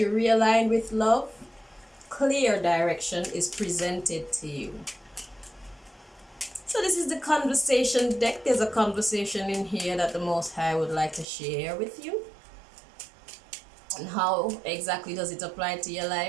realign with love, clear direction is presented to you. So this is the conversation deck. There's a conversation in here that the Most High would like to share with you. And how exactly does it apply to your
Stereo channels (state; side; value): drops out; left; at 11.2 s